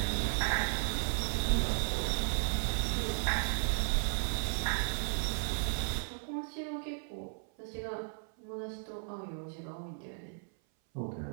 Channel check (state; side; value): silent; left; 54 dB below the other